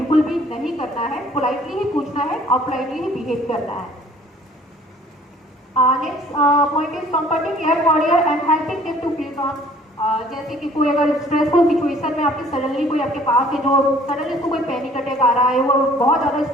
भी नहीं करना है, पोलाइटली ही पूछना है और पोलाइटली ही बिहेव करना है। Next point is comforting air warrior and helping them to feel calm. जैसे कि कोई अगर स्ट्रेसफुल सिचुएशन में आपके सडनली कोई आपके पास है जो सडनली उसको कोई पैनिक अटैक आ रहा है, वो बहुत ज़्यादा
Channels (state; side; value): normal; both; correlation 0.55